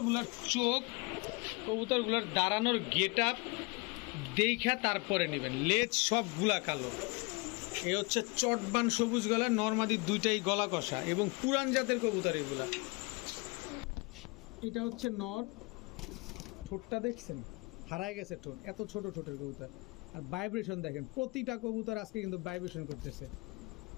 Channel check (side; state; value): right; quieter; 28.1 dB